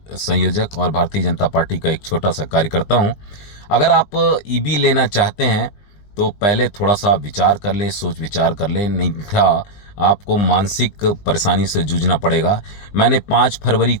संयोजक और भारतीय जनता पार्टी का एक छोटा सा कार्यकर्ता हूं। अगर आप ईबी लेना चाहते हैं तो पहले थोड़ा सा विचार कर लें, सोच विचार कर लें, नहीं था आपको मानसिक परेशानी से जूझना पड़ेगा। मैंने 5 फरवरी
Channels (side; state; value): right; late; 20 ms